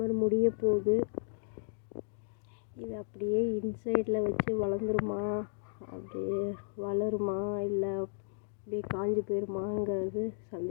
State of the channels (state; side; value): silent; right; digital silence